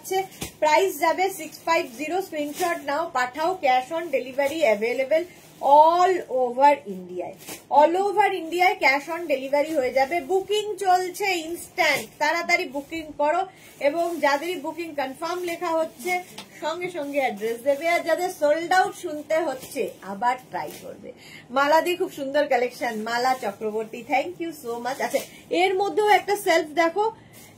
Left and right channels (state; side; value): identical; both; correlation 1.00